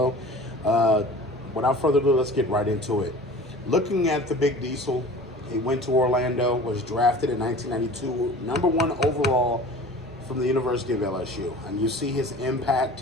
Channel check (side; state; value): both; normal; correlation 0.42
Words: Without further ado, let's get right into it. Looking at the Big Diesel, he went to Orlando, was drafted in 1992, number one overall from the University of LSU. And you see his